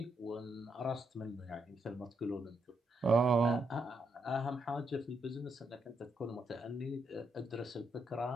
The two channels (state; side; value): normal; both; correlation 0.79